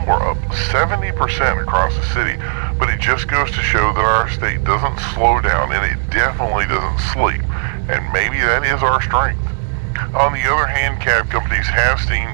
were up 70% across the city, but it just goes to show that our state doesn't slow down, and it definitely doesn't sleep, and maybe that is our strength. On the other hand, cab companies have seen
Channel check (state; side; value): silent; left; 69 dB below the other